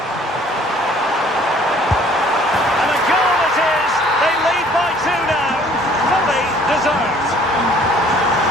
And a goal it is. They lead by 2 now. Fully deserved.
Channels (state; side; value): normal; both; correlation 0.56